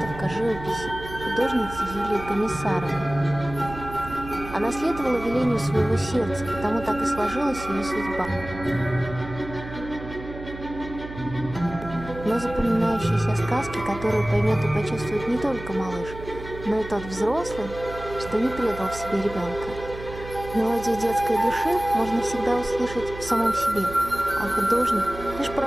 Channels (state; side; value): noise; right; hum, 12 dB below the sound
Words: живописи художницы Юлии Комиссаровой. Она следовала велению своего сердца, потому так и сложилась ее судьба. Но запоминающиеся сказки, которые поймет и почувствует не только малыш, но и тот взрослый, что не предал в себе ребенка. Мелодию детской души можно всегда услышать в самом себе, а художник — лишь